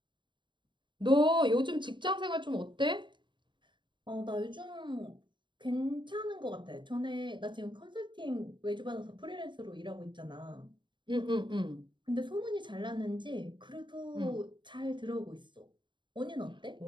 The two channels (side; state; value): left; late; 0.23 ms